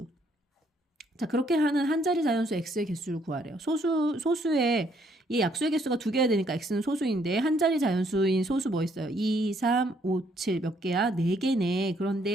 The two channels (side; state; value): both; normal; correlation 0.68